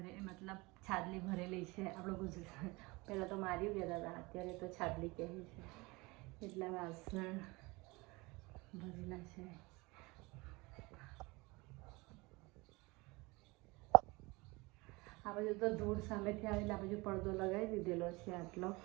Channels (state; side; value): quieter; left; 24.1 dB